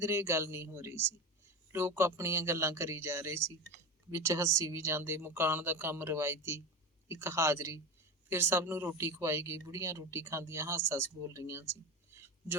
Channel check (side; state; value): both; normal; correlation 0.24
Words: ਗੱਲ ਨਹੀਂ ਹੋ ਰਹੀ ਸੀ। ਲੋਕ ਆਪਣੀਆਂ ਗੱਲਾਂ ਕਰੀ ਜਾ ਰਹੇ ਸੀ, ਵਿੱਚ ਹੱਸੀ ਵੀ ਜਾਂਦੇ। ਮਕਾਨ ਦਾ ਕੰਮ ਰਵਾਇਤੀ, ਇੱਕ ਹਾਜ਼ਰੀ। ਫਿਰ ਸਭ ਨੂੰ ਰੋਟੀ ਖਵਾਈ ਗਈ। ਬੁੜੀਆਂ ਰੋਟੀ ਖਾਂਦੀਆਂ ਹੱਸ-ਹੱਸ ਬੋਲ ਰਹੀਆਂ ਸੀ।